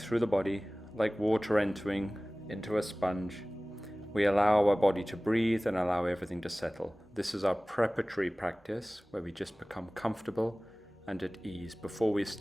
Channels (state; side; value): normal; both; correlation 0.98